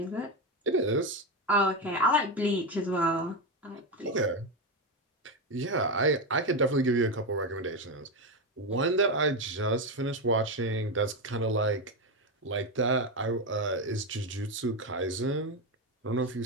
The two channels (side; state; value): both; normal; correlation 0.12